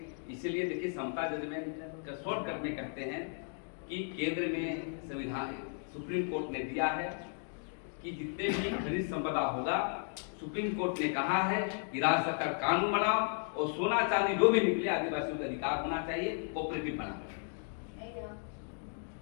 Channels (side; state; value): right; silent; 55 dB below the other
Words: इसीलिए देखिए, समता जजमेंट का शॉर्टकट में कहते हैं कि केंद्र में संविधान, सुप्रीम कोर्ट ने दिया है कि जितने भी खनिज संपदा होगा, सुप्रीम कोर्ट ने कहा है कि राज्य सरकार कानून बनाओ और सोना चांदी जो भी निकले आदिवासियों का अधिकार होना चाहिए, कोऑपरेटिव बना।